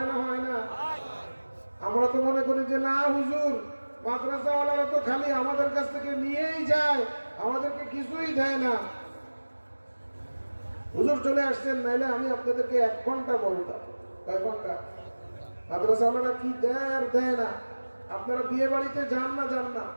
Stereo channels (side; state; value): both; inverted; correlation -1.00